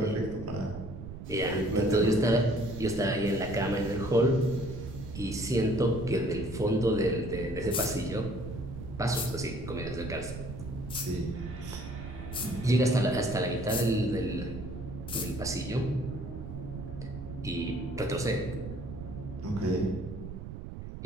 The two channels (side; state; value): right; noise; rumble, 9 dB below the sound